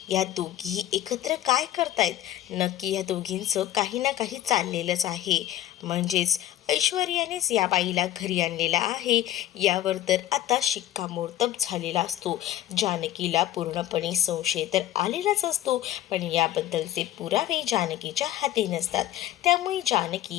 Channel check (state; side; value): quieter; right; 13.6 dB